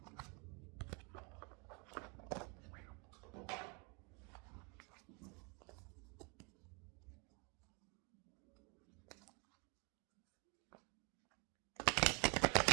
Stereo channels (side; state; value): left; quieter; 32.6 dB